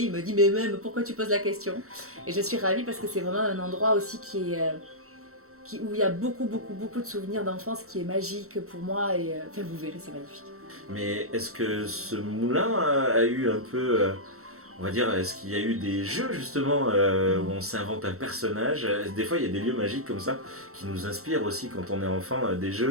il me dit mais même pourquoi tu poses la question? Et je suis ravie parce que c'est vraiment un endroit aussi où il y a beaucoup de souvenirs d'enfance, qui est magique pour moi, et enfin vous verrez, c'est magnifique. Mais est-ce que ce moulin a eu un peu... on va dire, est-ce qu'il y a eu des jeux justement où on s'invente un personnage? Des fois, il y a des lieux magiques comme ça qui nous inspirent aussi quand on est enfant, des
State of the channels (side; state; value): left; late; 0.64 ms